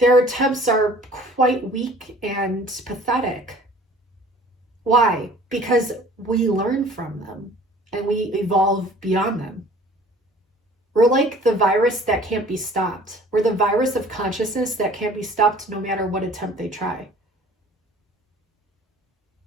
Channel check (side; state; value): both; normal; correlation 0.50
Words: attempts are quite weak and pathetic. Why? Because we learn from them and we evolve beyond them. We're like the virus that can't be stopped. We're the virus of consciousness that can't be stopped no matter what attempt they try.